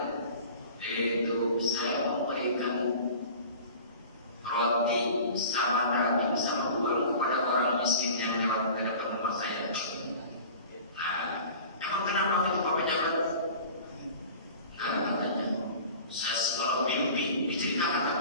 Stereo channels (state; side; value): inverted; both; correlation -0.41